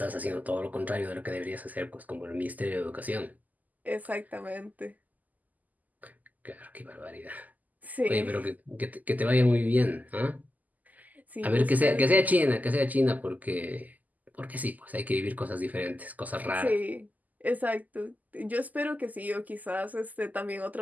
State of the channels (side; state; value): left; late; 0.080 ms